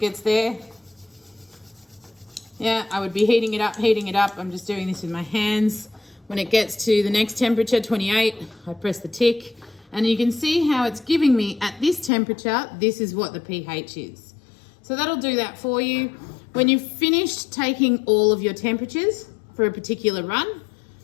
there. Yeah, I would be heating it up, heating it up. I'm just doing this with my hands. When it gets to the next temperature, 28, I press the tick. And you can see how it's giving me at this temperature, this is what the pH is. So that'll do that for you. When you've finished taking all of your temperatures for a particular run,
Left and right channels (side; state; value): right; drops out; at 12.1 s